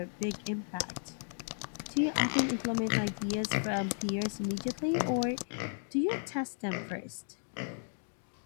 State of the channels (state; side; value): silent; right; 55 dB below the other